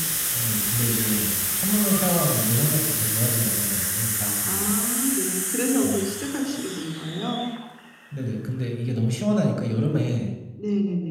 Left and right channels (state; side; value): identical; both; correlation 1.00